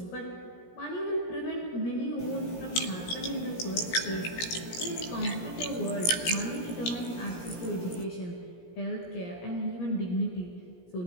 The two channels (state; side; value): late; right; 17 ms